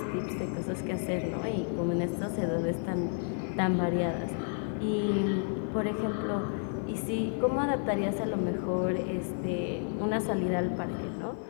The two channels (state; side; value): silent; right; 57 dB below the other